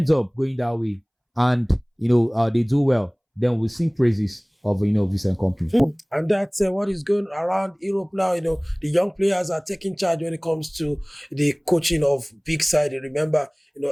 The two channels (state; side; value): identical; both; correlation 1.00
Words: up going that way and they do well, then we'll sing praises of Vincent Kompany. And that's what is going around Europe now. The young players are taking charge when it comes to the coaching of big side. Remember,